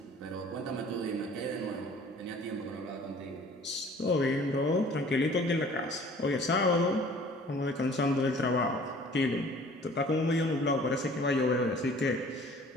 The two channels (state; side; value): normal; both; correlation 0.50